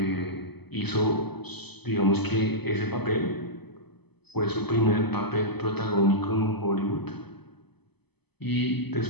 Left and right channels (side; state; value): right; late; 0.98 ms